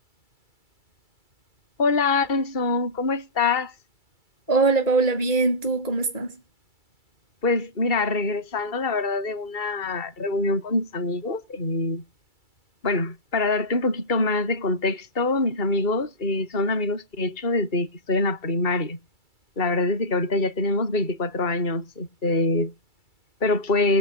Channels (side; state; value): right; late; 2.3 ms